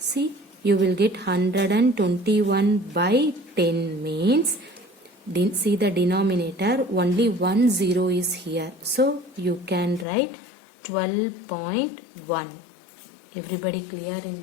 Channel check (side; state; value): right; drops out; at 10.1 s